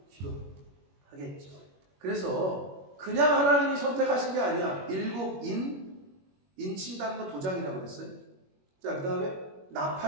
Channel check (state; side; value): late; left; 21 ms